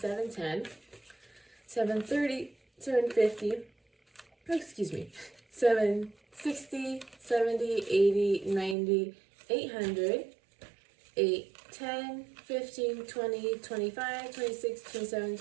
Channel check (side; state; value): left; drops out; at 8.8 s